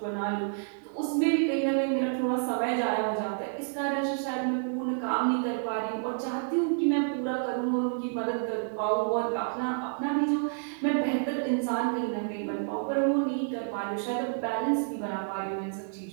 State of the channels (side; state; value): left; silent; digital silence